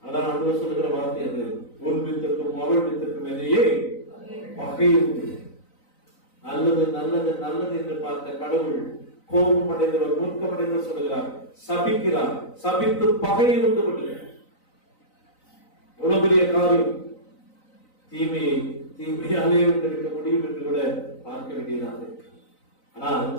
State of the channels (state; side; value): late; right; 3.9 ms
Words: அதான் ஆண்டவர் சொல்லுகிற வார்த்தை அது, உன் வித்துக்கும் அவள் வித்துக்கும் இடையே பகை உண்டு. நல்லது நல்லது நல்லது என்று பார்த்த கடவுள் கோபம் அடைந்தவர், மூர்க்கம் அடைந்தவர் சொல்லுகிறார், சபிக்கிறார். சபித்து பகையை உண்டு பண்ணுகிறார். எவ்வளவு பெரிய காரியம்! தீமையை தீமையாலே வென்றெடுக்க முடியும் என்று கூட பார்க்க வேண்டியதாக இருக்கு. ஆனால்